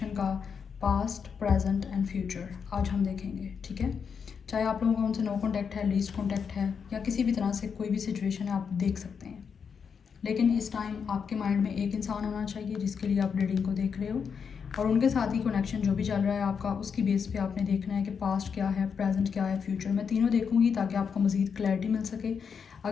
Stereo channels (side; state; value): right; quieter; 6.4 dB